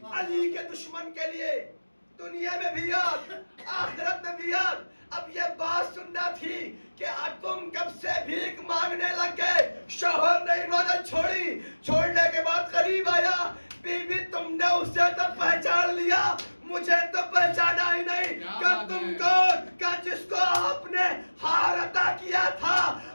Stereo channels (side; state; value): both; inverted; correlation -1.00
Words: علی کے دشمن کے لیے دنیا میں بھی آگ، آخرت میں بھی آگ۔ اب یہ بات سننا تھی کہ تم کب سے بھیک مانگنے لگ گئے۔ شوہر نے عبادت چھوڑی، چھوڑنے کے بعد قریب آیا، بی بی تم نے اسے تو پہچان لیا، مجھے تو پہچانا ہی نہیں، کہ تم کون؟ کہ جس کو آپ نے ہار عطا کیا تھا،